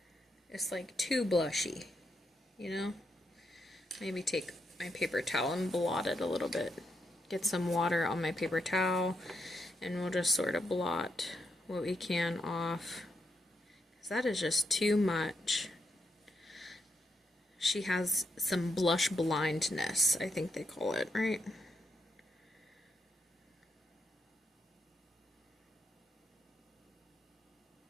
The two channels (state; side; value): normal; both; correlation 0.81